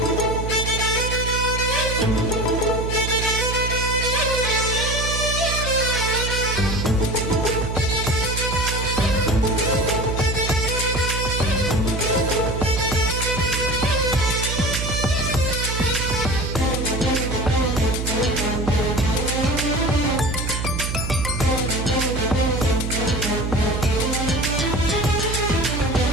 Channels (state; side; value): noise; right; hum, 3 dB below the sound